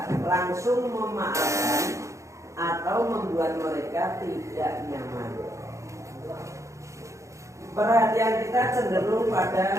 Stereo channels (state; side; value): late; left; 0.15 ms